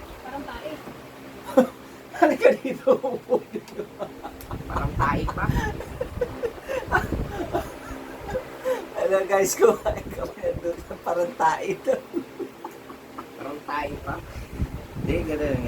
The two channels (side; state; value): both; identical; correlation 1.00